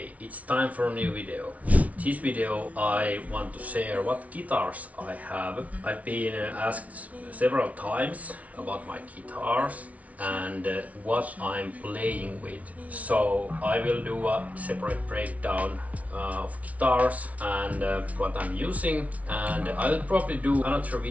it's time for a new video. This video I want to share what guitars I have. I've been asked several times about my guitars and what I'm playing with. So I will do a separate breakdown of guitars and what I'm using, and I'll probably do another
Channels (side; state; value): left; late; 0.068 ms